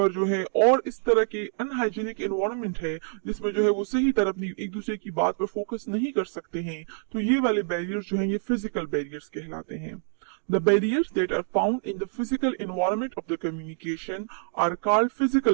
जो है और इस तरह के अनहाइजीनिक एनवायरनमेंट है जिसमें जो है वो सही तरह अपनी एक दूसरे की बात पर फोकस नहीं कर सकते हैं, तो ये वाले बैरियर्स जो है ये फिजिकल बैरियर्स कहलाते हैं. The barriers that are found in the physical environment of the communication are called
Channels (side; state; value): left; silent; digital silence